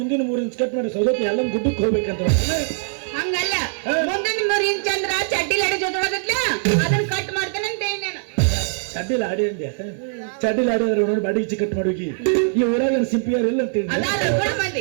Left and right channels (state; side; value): silent; left; digital silence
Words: 3 ಇಂಚ್ ಕಟ್ ಮಾಡಿ ಸೌದತ್ತಿ ಎಲ್ಲ ಗುಡ್ಡಕ್ಕೆ ಹೋಗ್ಬೇಕಂತ. ಹಂಗಲ್ಲ, ಮುಂದಿನ 3 ಇಂಚ್ ಅಂದ್ರ ಚಡ್ಡಿಲ್ ಅಡಿ ಜೊತೆ ಅದನ್ನ ಕಟ್ ಮಾಡ್ತೇನೆ ಅಂತ ಹೇಳಿ ನಾನು. ಚಡ್ಡಿಲ್ ಆಡಿ ಅಂದ್ಯ? ಚಡ್ಡಿಲ್ ಆಡಿ ಅಂದ್ರೆ ನೋಡಿ ಬಾಡಿ ಇಚ್ಚಿ ಕಟ್ ಮಾಡೋಗಿ. ಈ ಊರಾಗ ಸಿಂಪಿಯರ್ ಇಲ್ಲ ಅಂತ